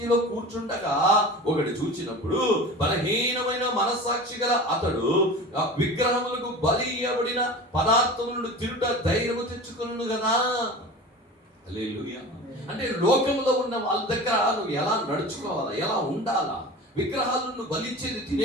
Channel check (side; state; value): both; normal; correlation 0.34